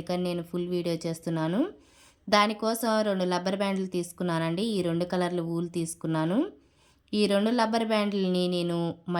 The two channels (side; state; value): both; identical; correlation 1.00